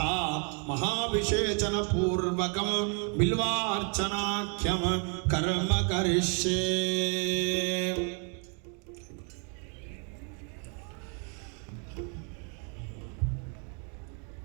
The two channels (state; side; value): quieter; left; 38.8 dB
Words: महाभिषेचन पूर्वकं बिल्वार्चनाख्यं कर्म करिष्ये।